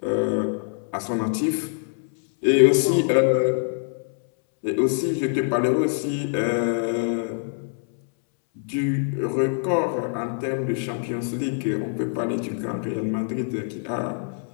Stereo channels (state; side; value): silent; right; 62 dB below the other